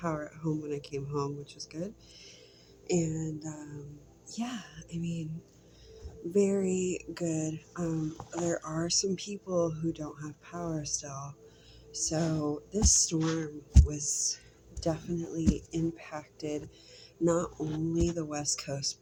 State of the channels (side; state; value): both; identical; correlation 1.00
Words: at home when I came home, which was good. And yeah, I mean, very good. There are some people who don't have power still. So this storm was definitely impacted not only the West Coast,